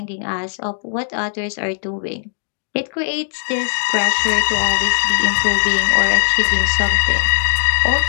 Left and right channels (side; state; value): right; silent; digital silence